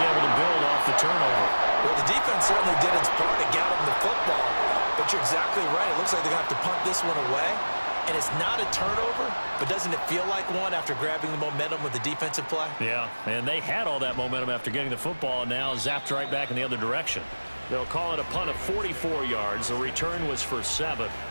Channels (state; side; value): inverted; both; correlation -1.00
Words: able to build off the turnover. Well, the defense certainly did its part to get him the football. But you're exactly right. It looks like they're going to have to punt this one away. And it's not a turnover, but doesn't it feel like one after grabbing the momentum with the defensive play? Yeah, and they had all that momentum after getting the football and now zapped right back in the other direction. They'll call it a punt of 44 yards. The return was for 7.